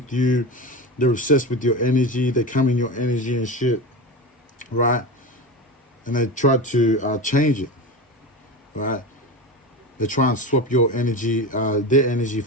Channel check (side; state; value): both; normal; correlation 0.24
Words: you. They're obsessed with your energy. They come in your energy and shit, right? And they try to change it, right? They try and swap your energy, their energy